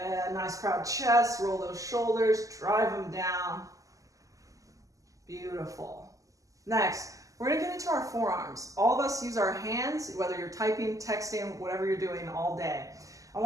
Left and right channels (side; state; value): left; late; 0.16 ms